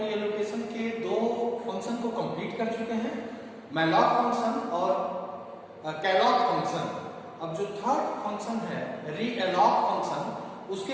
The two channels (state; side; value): identical; both; correlation 1.00